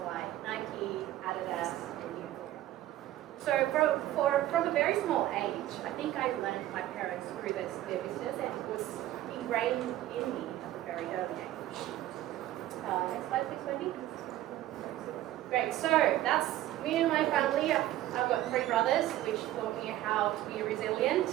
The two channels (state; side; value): quieter; left; 14.3 dB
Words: like Nike, Adidas, and Uniqlo. So from a very small age, I think I learned my parents grew their business, and it was ingrained in me at a very early age. Next slide, please, Wendy. Great, so that's me and my family. I've got 3 brothers, which taught me how to be resilient.